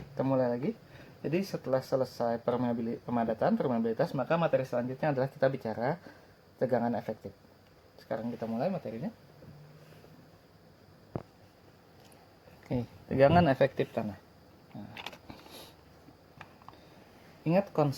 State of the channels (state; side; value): identical; both; correlation 1.00